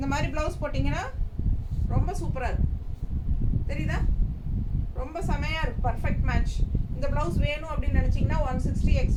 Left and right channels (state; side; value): identical; both; correlation 1.00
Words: மாதிரி ப்ளவுஸ் போட்டிங்கன்னா ரொம்ப சூப்பராக இருக்கும். தெரியுதா? ரொம்ப செமையாக இருக்கும். Perfect match. இந்த ப்ளவுஸ் வேணும் அப்படின்னு நினச்சிங்கன்னா 160